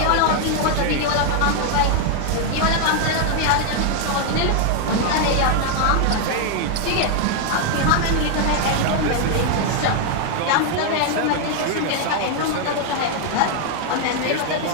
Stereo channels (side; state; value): both; different; correlation 0.00